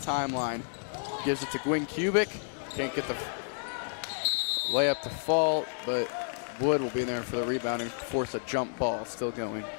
Gives it to Gwynn Kubik. Can't get the layup to fall, but Wood will be there for the rebound and force a jump ball. Still going.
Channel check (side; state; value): right; silent; 57 dB below the other